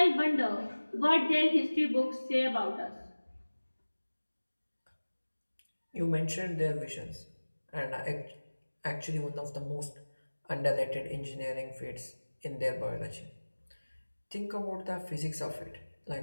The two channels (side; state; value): both; inverted; correlation -1.00